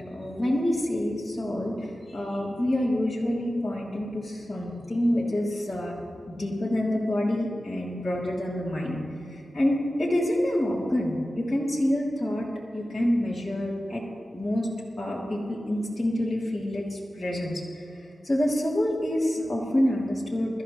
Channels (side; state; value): both; normal; correlation 0.95